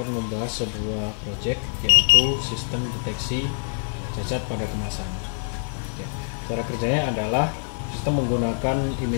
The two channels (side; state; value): right; silent; 57 dB below the other